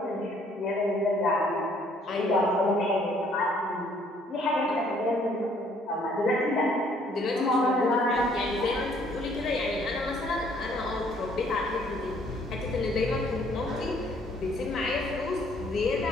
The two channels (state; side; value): normal; both; correlation 0.63